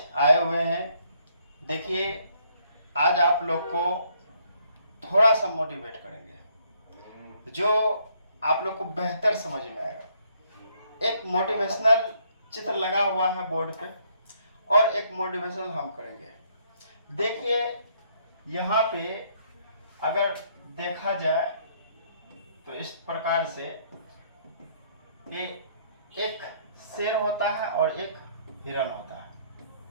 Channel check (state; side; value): inverted; both; correlation -0.67